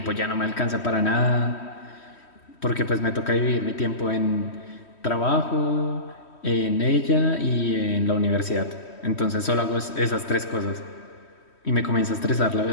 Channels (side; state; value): right; late; 3.1 ms